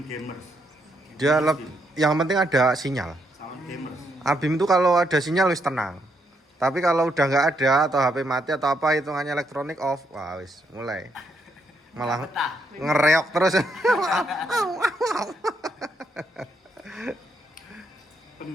gamers. Dia yang penting ada sinyal. Sound gamers. Habim itu kalau ada sinyal wis tenang. Tapi kalau udah nggak ada atau HP mati atau apa hitungannya elektronik off, wah wis mulai malah Betah. ngereok terus.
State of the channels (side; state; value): both; normal; correlation 0.77